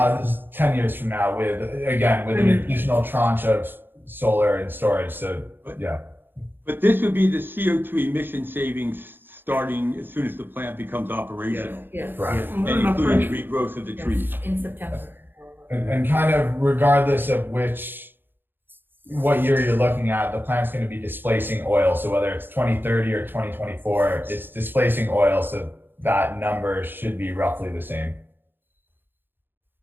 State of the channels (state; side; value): late; left; 0.098 ms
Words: is 10 years from now with an additional tranche of solar and storage. So, yeah. But this would be the CO2 emission savings starting as soon as the plant becomes operational. Yes, Right. And including regrowth of the trees. in September. And kind of regardless of what year you're looking at, the plant's going to be displacing oil. So whether it's 2030 or 2024, it's displacing oil. So that number should be roughly the same.